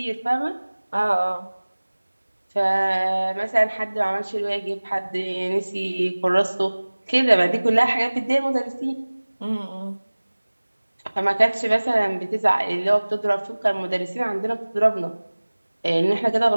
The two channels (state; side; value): inverted; both; correlation -1.00